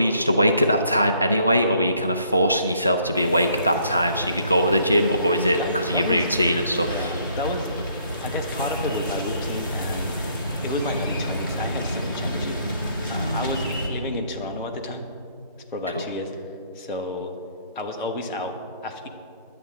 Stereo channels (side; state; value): both; inverted; correlation -0.64